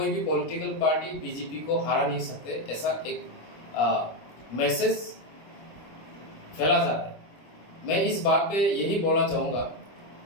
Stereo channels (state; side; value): late; right; 25 ms